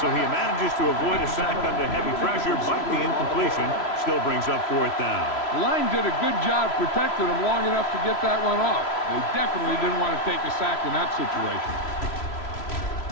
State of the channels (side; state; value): right; late; 3.0 ms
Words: he manages to avoid a sack under heavy pressure, but the incompletion still brings up 4th down. The line did a good job protecting him long enough to get that one off. They definitely didn't want to take a sack in that situation.